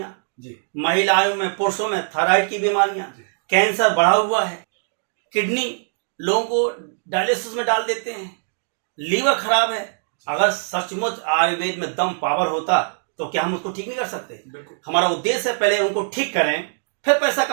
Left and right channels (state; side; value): silent; left; digital silence